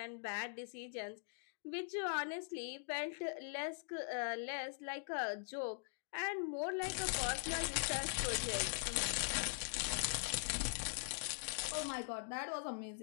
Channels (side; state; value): right; silent; digital silence